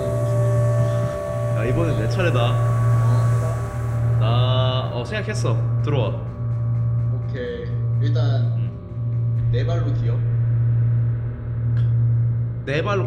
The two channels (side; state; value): both; identical; correlation 1.00